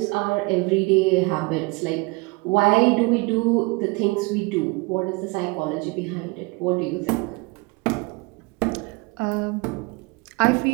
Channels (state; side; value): quieter; left; 26.8 dB